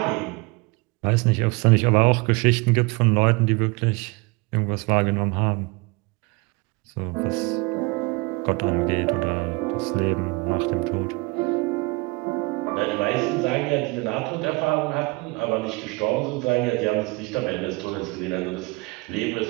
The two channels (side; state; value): left; quieter; 26.4 dB